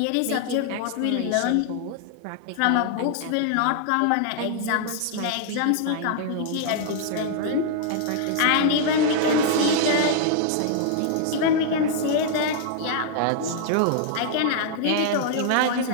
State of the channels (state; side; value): different; both; correlation -0.01